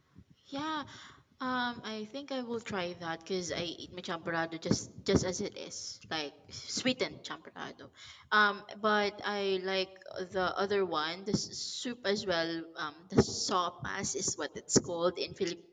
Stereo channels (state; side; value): identical; both; correlation 1.00